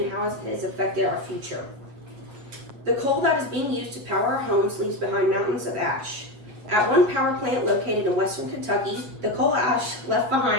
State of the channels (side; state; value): left; late; 8.1 ms